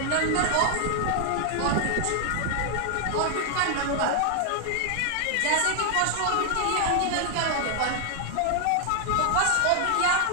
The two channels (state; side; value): different; both; correlation 0.00